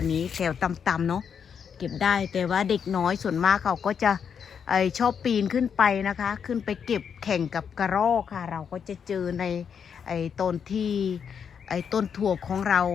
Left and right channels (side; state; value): right; quieter; 7.2 dB